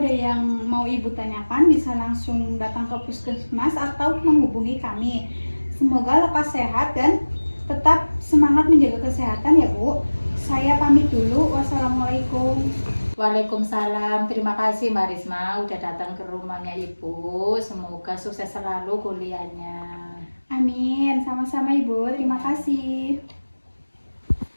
yang mau Ibu tanyakan bisa langsung datang ke puskesmas atau menghubungi kami. Semoga lekas sehat dan tetap semangat menjaga kesehatan ya Bu. Saya pamit dulu. Wassalamualaikum. Waalaikumsalam. Terima kasih Mbak Risma udah datang ke rumahnya Ibu. Semoga sukses selalu kuliahnya. Amin. Sama-sama Ibu. Terima kasih.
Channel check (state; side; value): inverted; both; correlation -1.00